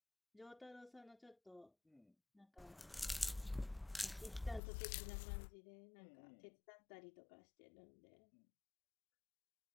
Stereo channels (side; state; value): right; drops out; at 4.6 s